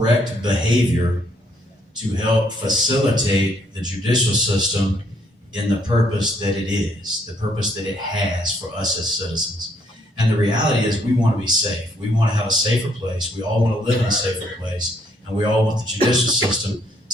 behavior, to help facilitate the judicial system in the purpose that it is, the purpose that it has for us as citizens. And the reality is we want to be safe. We want to have a safer place. We all want to live in a safer place. And we all want the judicial system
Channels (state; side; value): normal; both; correlation 0.69